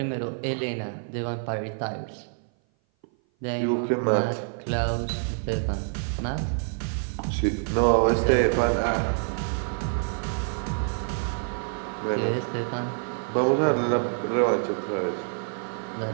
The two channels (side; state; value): left; silent; 57 dB below the other